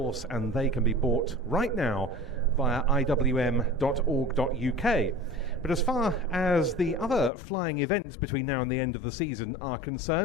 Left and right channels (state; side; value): drops out; right; at 7.3 s